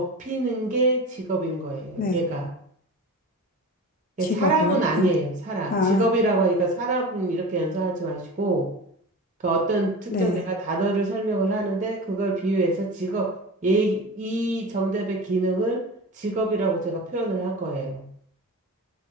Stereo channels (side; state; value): both; normal; correlation 0.31